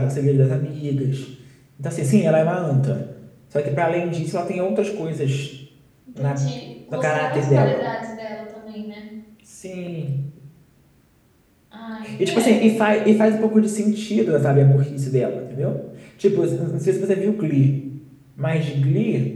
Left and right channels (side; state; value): both; identical; correlation 1.00